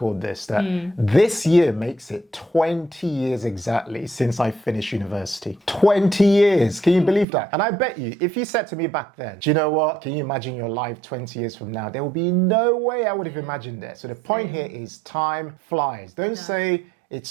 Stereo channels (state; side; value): drops out; left; at 7.2 s